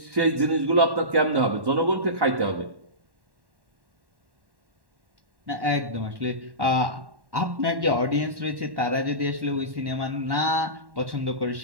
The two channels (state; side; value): late; left; 1.1 ms